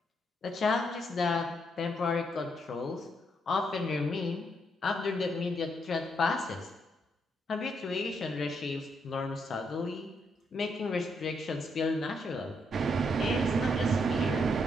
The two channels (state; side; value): normal; both; correlation 0.77